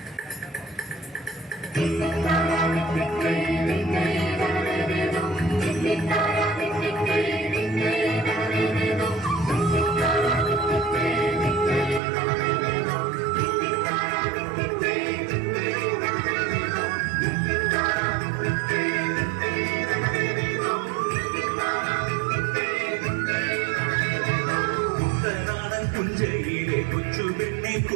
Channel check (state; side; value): drops out; left; at 12.0 s